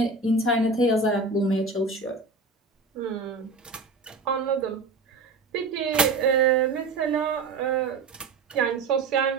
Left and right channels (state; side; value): quieter; left; 3.9 dB